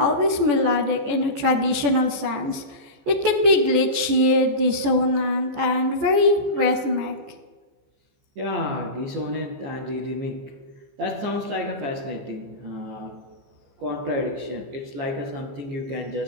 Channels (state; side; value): late; left; 15 ms